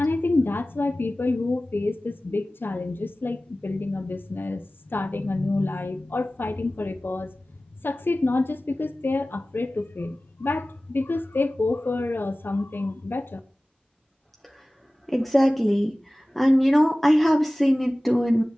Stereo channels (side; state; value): both; normal; correlation 0.97